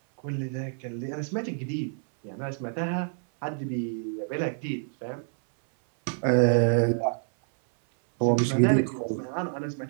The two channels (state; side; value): silent; left; 60 dB below the other